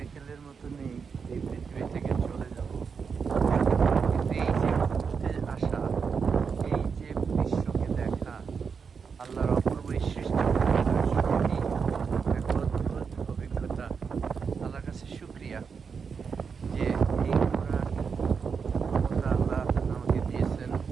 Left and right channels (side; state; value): left; quieter; 5.9 dB